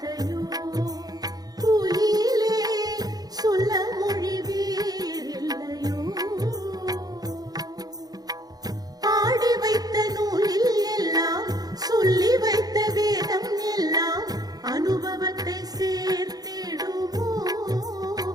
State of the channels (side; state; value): left; late; 0.19 ms